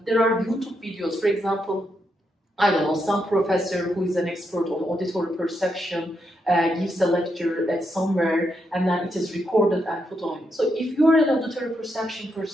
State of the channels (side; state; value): both; normal; correlation 0.81